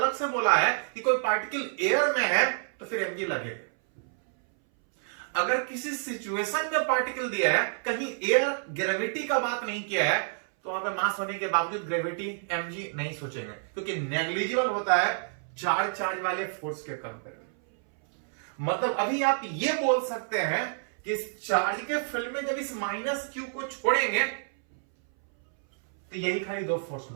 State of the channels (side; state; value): left; silent; 59 dB below the other